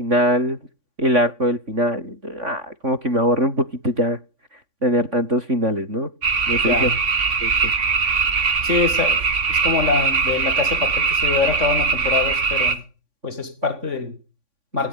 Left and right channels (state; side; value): late; left; 3.5 ms